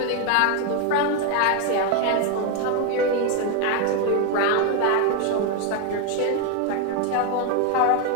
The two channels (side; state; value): both; different; correlation 0.01